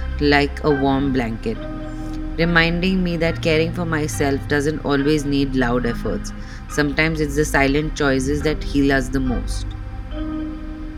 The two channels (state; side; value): identical; both; correlation 1.00